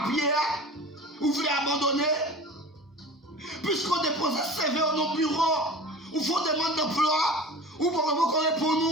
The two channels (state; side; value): normal; both; correlation 0.38